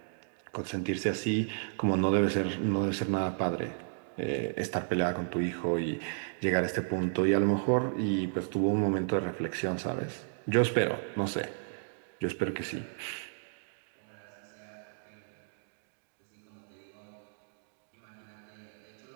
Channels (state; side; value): silent; left; digital silence